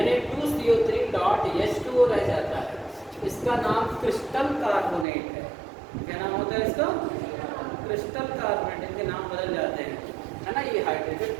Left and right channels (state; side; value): drops out; left; at 5.1 s